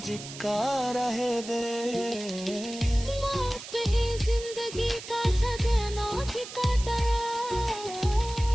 रहे दे। मौत ही जिंदगी का सदना ठिकाना।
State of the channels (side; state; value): right; noise; hiss, 12 dB below the sound